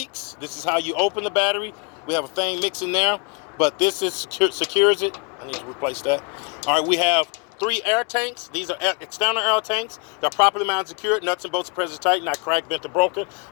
This is how you open the battery. We have a thing mixing there, but this secures it. I need to replace that. All right, we have 3 air tanks. These are external air tanks. They're properly mounted, secured. Nuts and bolts are present tight, not cracked, bent, or broken.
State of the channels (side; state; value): right; quieter; 33.7 dB